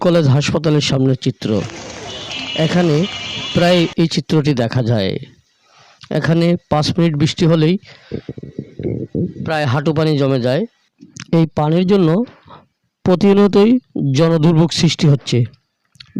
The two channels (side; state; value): both; identical; correlation 1.00